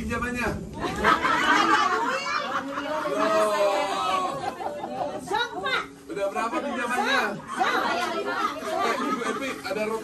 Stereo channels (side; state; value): both; identical; correlation 1.00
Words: Sok, Pak. Udah berapa pinjamannya? Ibu Epi, ada